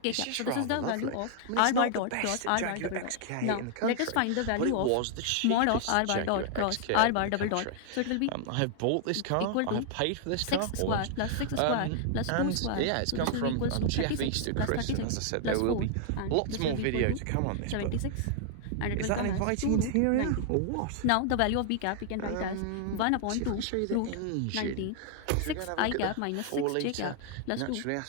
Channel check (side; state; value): both; different; correlation 0.00